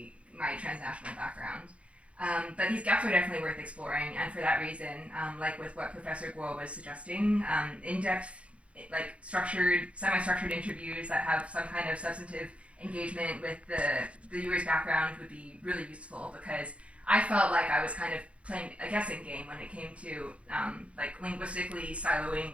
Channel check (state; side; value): late; left; 0.062 ms